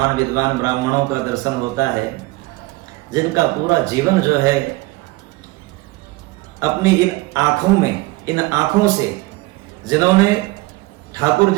विद्वान ब्राह्मणों का दर्शन होता है जिनका पूरा जीवन जो है अपनी इन आंखों से जिन्होंने ठाकुर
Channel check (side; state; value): left; quieter; 21.3 dB